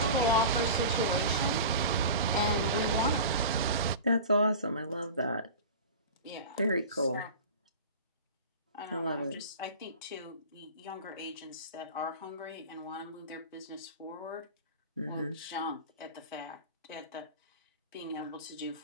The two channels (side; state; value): both; inverted; correlation -0.34